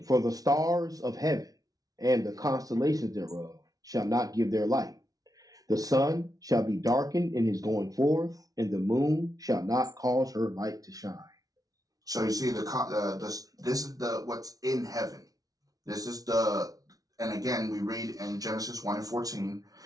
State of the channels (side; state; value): left; late; 0.18 ms